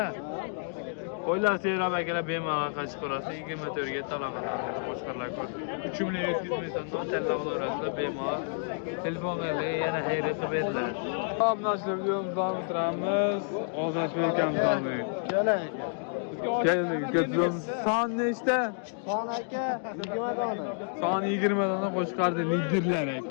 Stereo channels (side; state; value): right; silent; digital silence